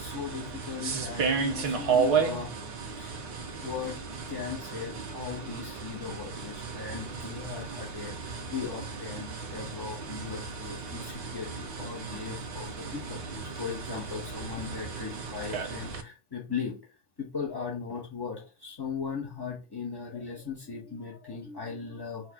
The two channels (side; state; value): left; late; 3.8 ms